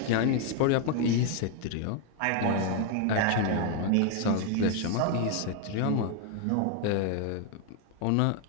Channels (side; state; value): both; different; correlation 0.01